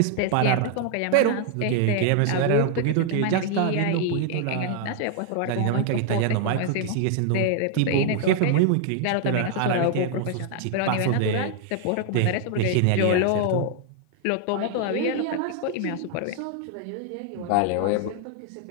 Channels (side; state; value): both; different; correlation 0.00